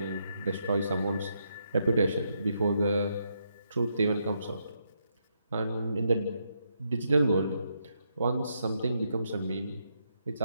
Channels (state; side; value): inverted; both; correlation -0.79